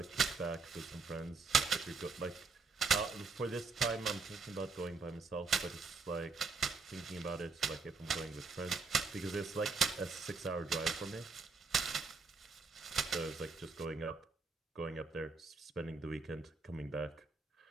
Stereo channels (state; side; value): quieter; left; 4.4 dB